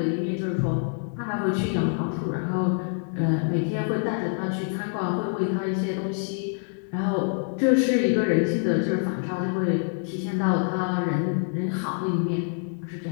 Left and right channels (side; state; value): right; silent; 56 dB below the other